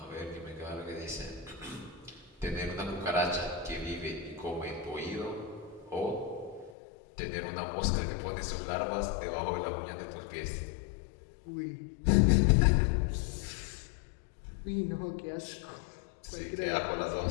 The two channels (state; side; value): drops out; right; at 6.7 s